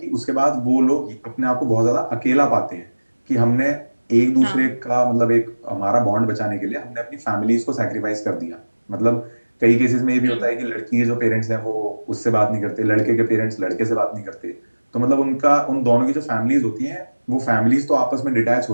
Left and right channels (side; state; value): both; inverted; correlation -1.00